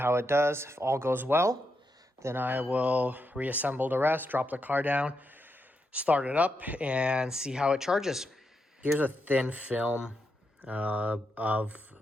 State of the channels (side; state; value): both; normal; correlation 0.83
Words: it does. If all goes well, then I will reassemble the rest, drop the car down, start it up, and see how it charges. Here's a thin film of